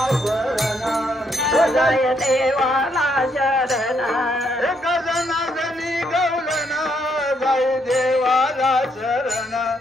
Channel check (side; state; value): both; normal; correlation 0.74